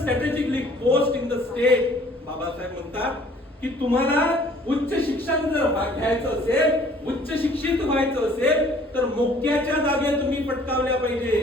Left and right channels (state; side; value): normal; both; correlation 0.56